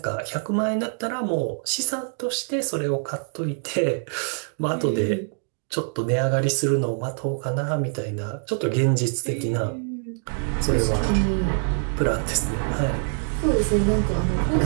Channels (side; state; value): left; silent; 60 dB below the other